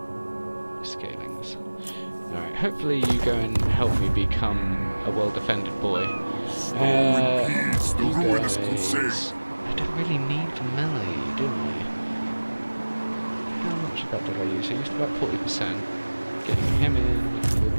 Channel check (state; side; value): inverted; both; correlation -1.00